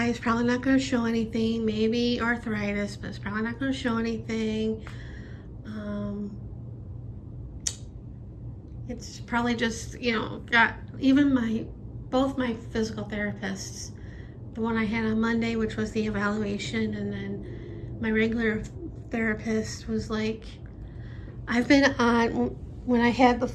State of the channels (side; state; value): both; identical; correlation 1.00